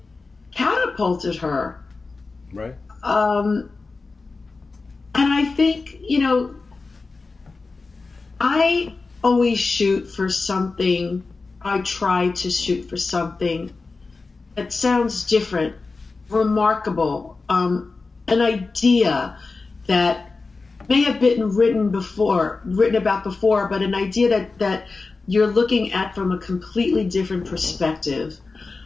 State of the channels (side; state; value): right; quieter; 4.0 dB